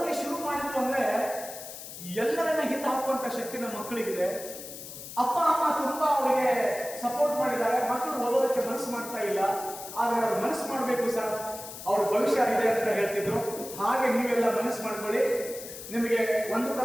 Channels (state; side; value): noise; left; hiss, 12 dB below the sound